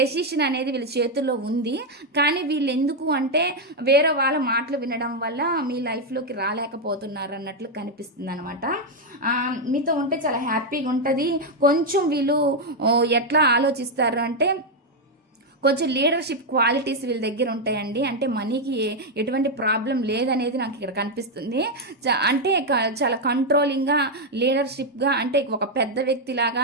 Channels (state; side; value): normal; both; correlation 0.01